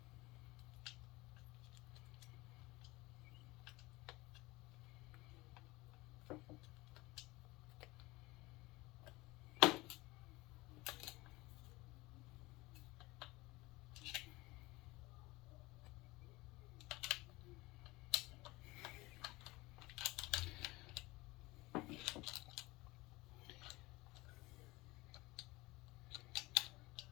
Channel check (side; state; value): right; quieter; 21.4 dB